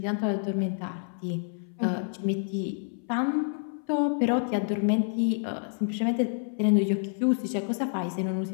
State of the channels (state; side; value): silent; right; 59 dB below the other